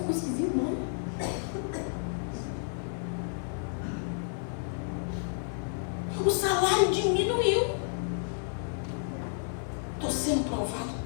esquisito, não. O salário diminuiu. Estou sendo provado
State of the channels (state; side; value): silent; right; 56 dB below the other